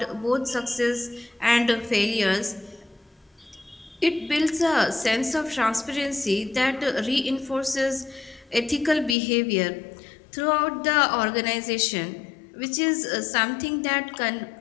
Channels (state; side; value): drops out; right; at 9.2 s